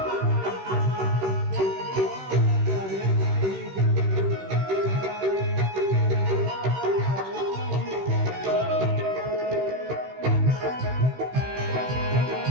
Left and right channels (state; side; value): late; left; 16 ms